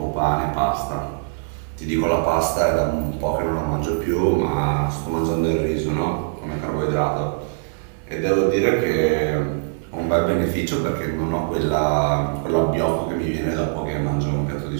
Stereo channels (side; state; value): left; silent; digital silence